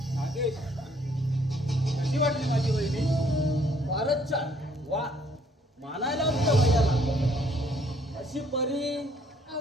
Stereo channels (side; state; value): both; normal; correlation 0.64